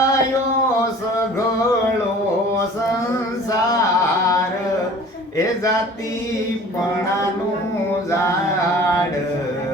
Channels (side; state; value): both; normal; correlation 0.46